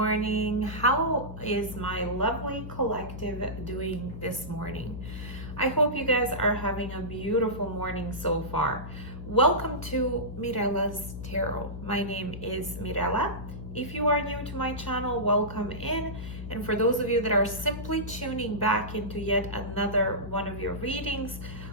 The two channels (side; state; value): left; noise; hum, 9 dB below the sound